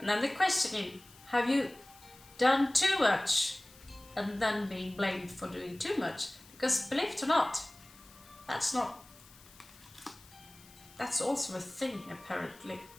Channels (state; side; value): noise; left; hiss, 23 dB below the sound